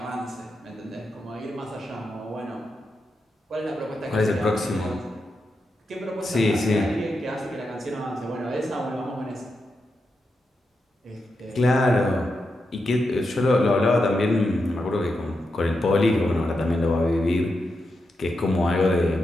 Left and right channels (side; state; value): both; normal; correlation 0.86